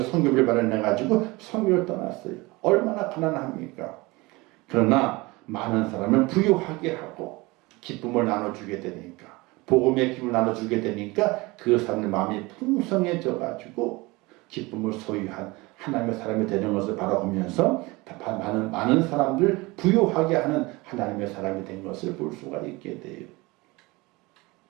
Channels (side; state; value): left; quieter; 23.1 dB